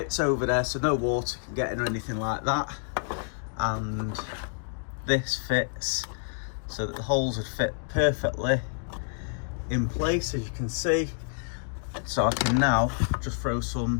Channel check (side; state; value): right; silent; digital silence